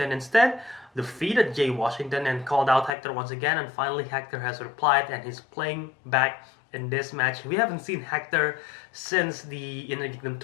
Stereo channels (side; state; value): right; drops out; at 2.9 s